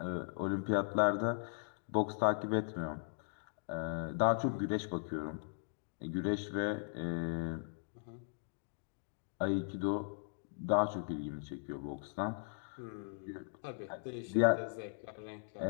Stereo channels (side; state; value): right; silent; digital silence